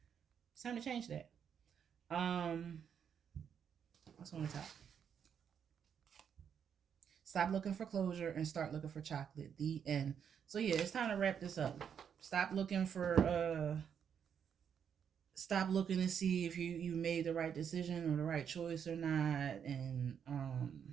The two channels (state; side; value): quieter; left; 7.8 dB